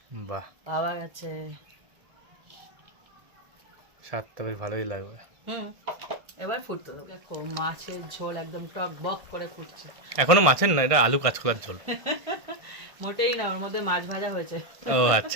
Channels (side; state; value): left; late; 1.6 ms